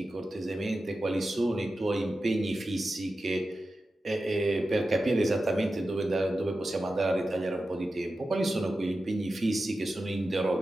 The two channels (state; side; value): normal; both; correlation 0.92